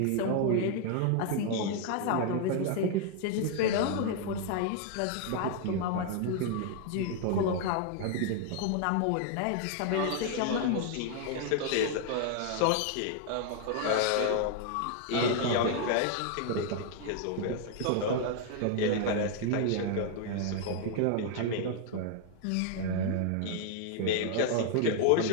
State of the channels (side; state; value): both; different; correlation 0.00